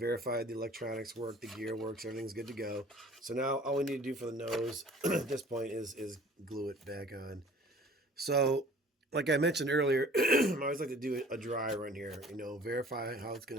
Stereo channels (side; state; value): both; normal; correlation 0.49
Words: the electronics work, the gear works, everything's good to go. So now all we need to do for the nose at this point is glue it back on. So like I mentioned earlier, I always like to do a dry run here, verify how it's